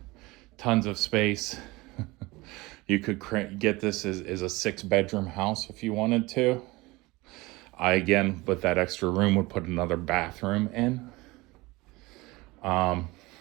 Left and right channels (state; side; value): quieter; left; 22.2 dB